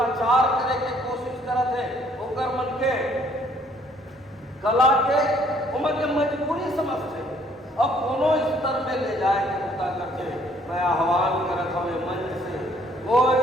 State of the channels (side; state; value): both; normal; correlation 0.63